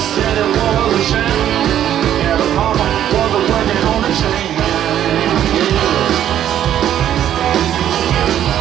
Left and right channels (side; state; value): left; quieter; 10.9 dB